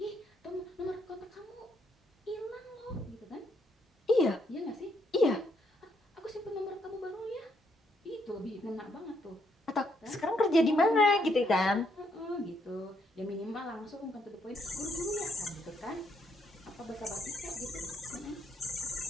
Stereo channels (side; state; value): both; normal; correlation 0.74